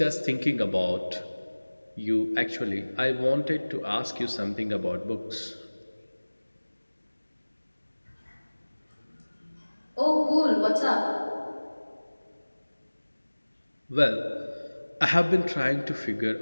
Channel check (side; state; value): both; inverted; correlation -1.00